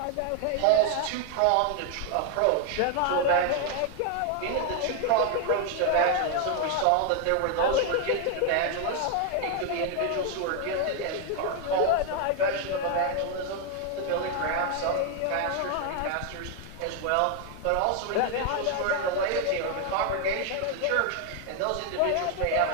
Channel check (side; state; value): both; different; correlation 0.00